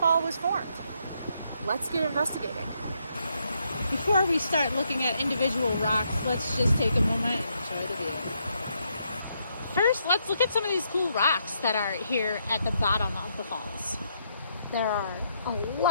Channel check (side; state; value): both; inverted; correlation -0.76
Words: was formed. Let's get investigating. Before we start looking at individual rocks, let's just take a moment and enjoy the view. First, let's look at some of these cool rocks that are here at the bottom of the falls. There are a